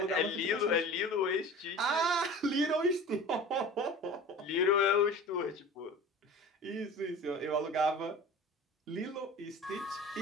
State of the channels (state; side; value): normal; both; correlation 0.39